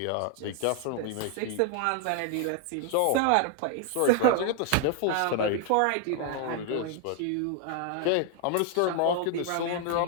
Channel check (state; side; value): different; both; correlation 0.00